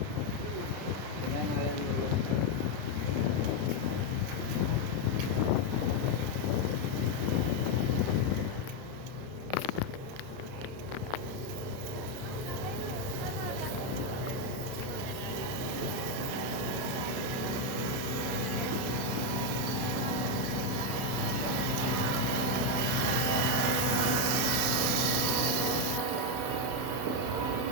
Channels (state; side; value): late; left; 31 ms